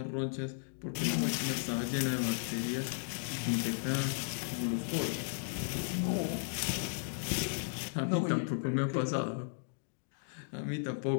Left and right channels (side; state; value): right; silent; digital silence